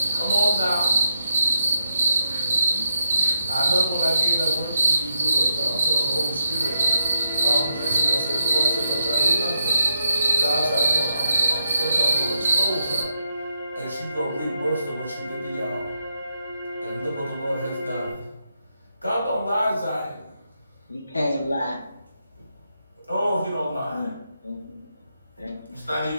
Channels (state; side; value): inverted; both; correlation -0.81